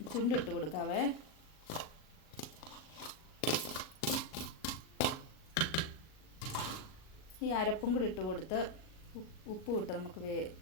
ചുണ്ടിട്ട് കൊടുക്കാവേ. ഈ അരപ്പും കൂടി ഇട്ട് കൊടുത്ത് ഉപ്പും ഇട്ട് നമുക്ക്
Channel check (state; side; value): late; right; 38 ms